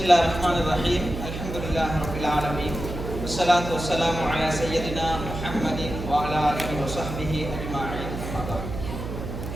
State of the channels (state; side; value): noise; right; hum, 7 dB below the sound